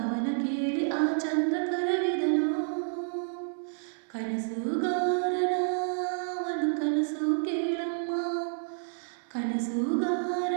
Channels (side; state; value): left; silent; 58 dB below the other